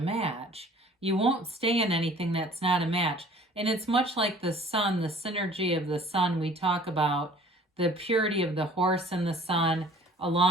You won't stay in anything that's not a match. And it's much like the sun, the synergy of the sun. We talk about the purity of the horse and the sun,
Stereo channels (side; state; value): both; normal; correlation 0.51